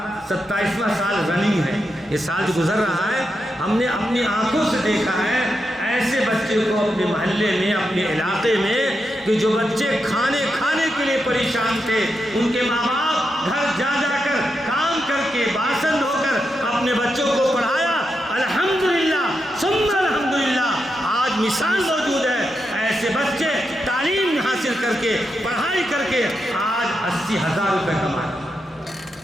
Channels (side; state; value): both; normal; correlation 0.85